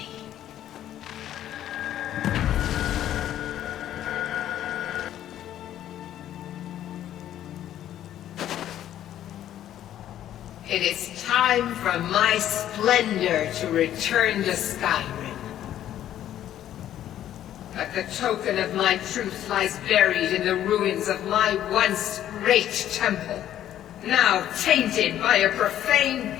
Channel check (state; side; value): quieter; right; 11.7 dB